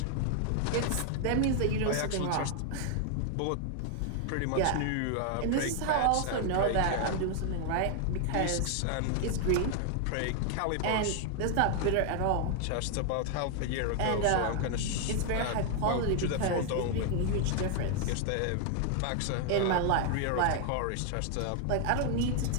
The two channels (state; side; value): different; both; correlation 0.00